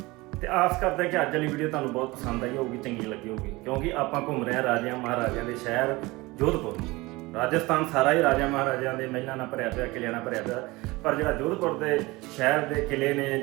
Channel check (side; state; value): left; quieter; 22.0 dB